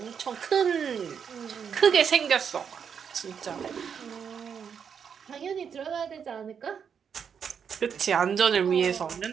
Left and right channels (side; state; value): left; quieter; 7.2 dB